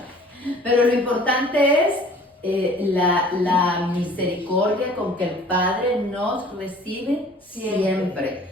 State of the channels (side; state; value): both; normal; correlation 0.50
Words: Pero lo importante es la misericordia con que el Padre nos recibe